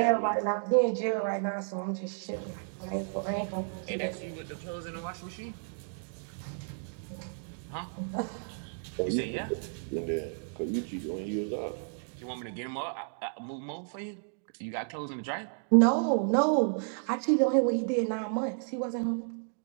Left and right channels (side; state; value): left; silent; digital silence